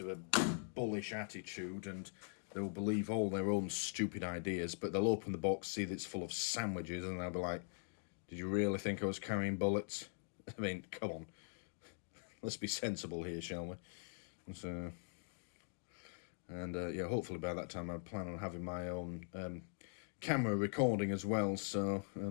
of a bullish attitude and they'll believe all their own stupid ideas, but they'll open the box, see that it's full of sandwiches, and they'll be like, did you really think I was carrying bullets? I mean, come on. let's be sensible here, shall we? So, and yeah, hopefully by that time I plan on having my own camera recording as well. So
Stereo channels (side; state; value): right; silent; digital silence